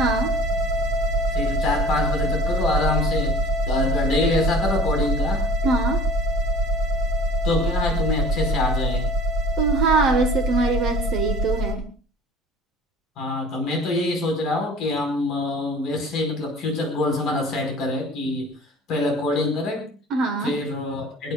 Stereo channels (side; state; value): both; normal; correlation 0.45